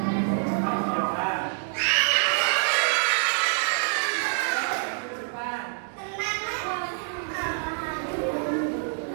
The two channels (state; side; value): silent; left; digital silence